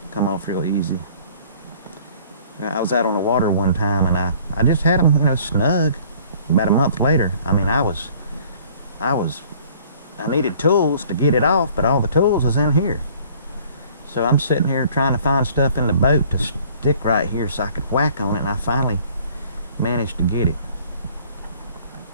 come off real easy. I was out on the water one time, and I just had them, you know, snug. About a month later, I mean, I needed tools to get it off, but all the tools was in here. So I'm sitting here trying to find stuff in the boat to stick right here so I could whack on it, and I finally managed to get it.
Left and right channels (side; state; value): both; inverted; correlation -0.54